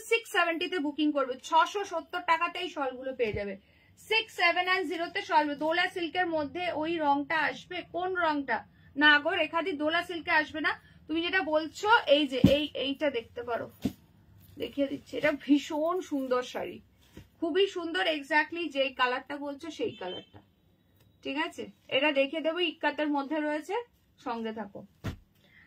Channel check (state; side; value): identical; both; correlation 1.00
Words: 670 তে বুকিং করবে, 670 টাকাতে এই শলগুলো পেয়ে যাবে। 6790 তে শল। দোলা সিল্কের মধ্যে ওই রংটা আসবে, কোন রংটা? না গো রেখাদি, দোলা সিল্কে আসবে না। তুমি যেটা বলছো এই যে এইটা দেখতে পারো, দেখিয়ে দিচ্ছি। এটা ভীষণ সুন্দর শাড়ি, খুবই সুন্দর, এক্স্যাক্টলি যে কালারটা বলছো সেই কালারটা, ঠিক আছে? এটা দেখিয়ে দেবো, ইক্কাতের মধ্যে রয়েছে, সঙ্গে থাকো।